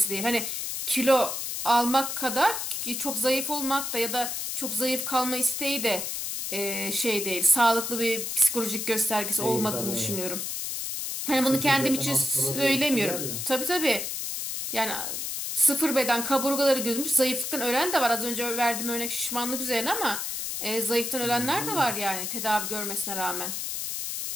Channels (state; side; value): noise; left; hiss, 3 dB below the sound